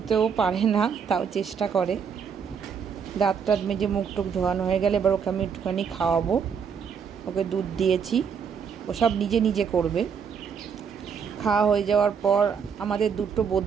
পারে না, তাও চেষ্টা করে। দাঁত টাত মেজে মুখ টুক ধোয়ানো হয়ে গেলে এবার ওকে আমি একটুখানি খাওয়াবো। ওকে দুধ দিয়েছি, ও সব নিজে নিজে করবে। খাওয়া হয়ে যাওয়ার পর আমাদের দুটো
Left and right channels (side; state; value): left; quieter; 6.7 dB